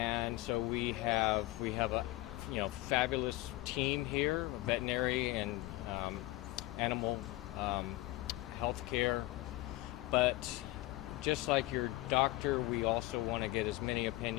so we have a fabulous team here, veterinary and animal health care. But just like your doctor, we also want to get as many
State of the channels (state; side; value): quieter; right; 18.7 dB